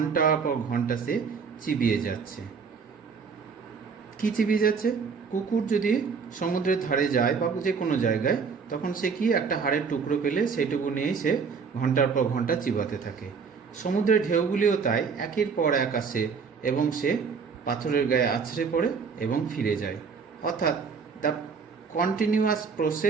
পর ঘন্টা সে চিবিয়ে যাচ্ছে। কি চিবিয়ে যাচ্ছে? কুকুর যদি সমুদ্রের ধারে যায় বা যে কোনো জায়গায়, তখন সে কি একটা হাড়ের টুকরো পেলে সেইটুকু নিয়েই সে ঘন্টার পর ঘন্টা চিবাতে থাকে। সমুদ্রের ঢেউগুলিও তাই একের পর এক আসে এবং সে পাথরের গায়ে আছড়ে পড়ে এবং ফিরে যায়। অর্থাৎ the continuous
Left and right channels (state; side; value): quieter; left; 5.6 dB